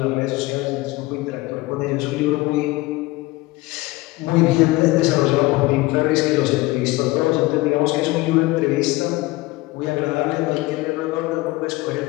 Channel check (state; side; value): quieter; right; 20.3 dB